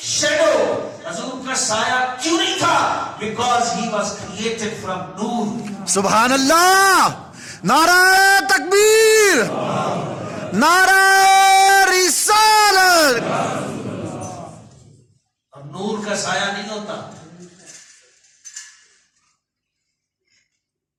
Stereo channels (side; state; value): both; identical; correlation 1.00